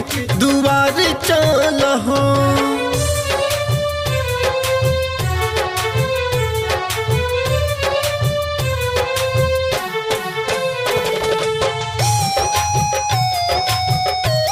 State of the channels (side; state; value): both; identical; correlation 1.00